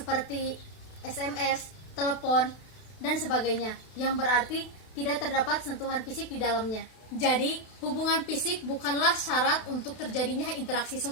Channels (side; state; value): right; late; 32 ms